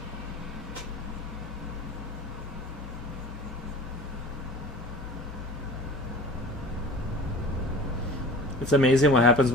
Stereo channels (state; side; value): normal; both; correlation 0.40